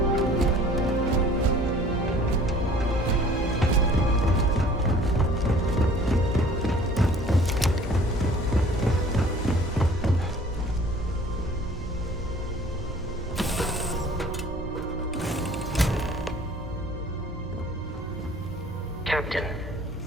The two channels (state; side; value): normal; both; correlation 0.51